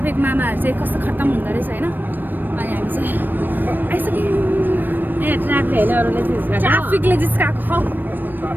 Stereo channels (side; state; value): left; late; 0.092 ms